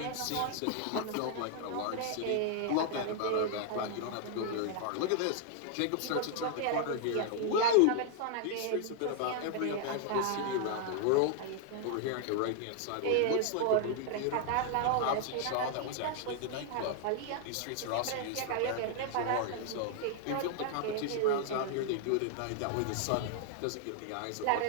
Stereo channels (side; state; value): both; different; correlation 0.00